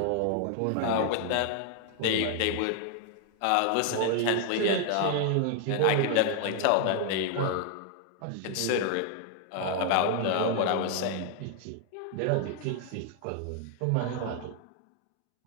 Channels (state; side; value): different; both; correlation 0.00